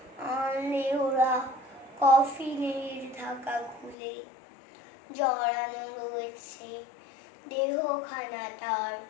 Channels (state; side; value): drops out; right; at 4.0 s